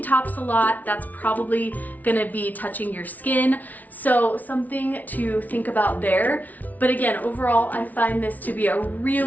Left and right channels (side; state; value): right; late; 0.076 ms